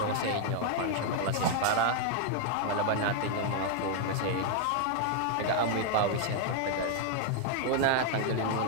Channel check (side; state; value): both; different; correlation 0.00